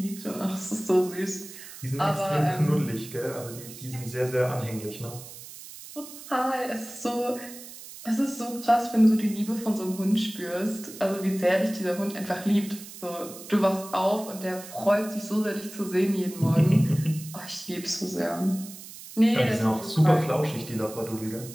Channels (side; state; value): right; noise; hiss, 15 dB below the sound